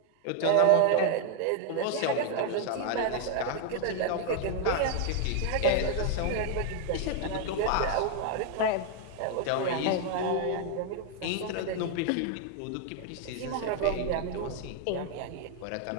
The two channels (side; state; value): both; different; correlation 0.00